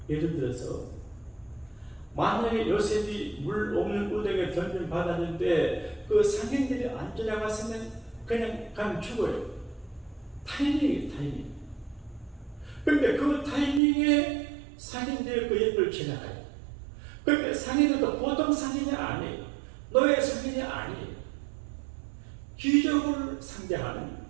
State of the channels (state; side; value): drops out; left; at 13.8 s